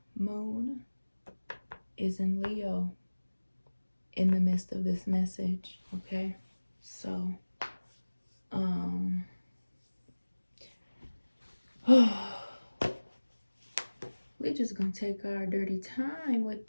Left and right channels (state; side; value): inverted; both; correlation -1.00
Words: moon is in Leo in the midst of this message, okay? So we're just gonna take our dirty time with